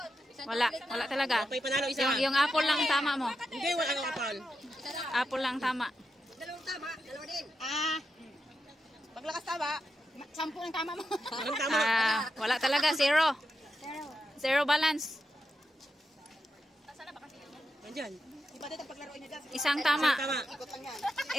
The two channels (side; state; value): both; normal; correlation 0.87